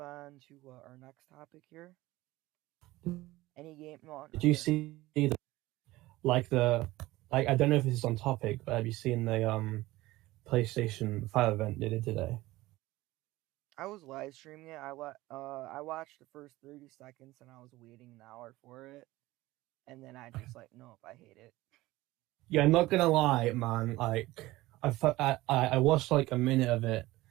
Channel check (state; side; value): quieter; left; 18.4 dB